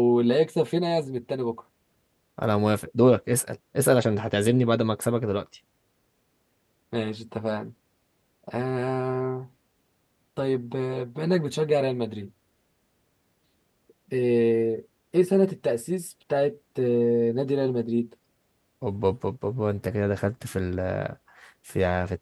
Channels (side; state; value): both; identical; correlation 1.00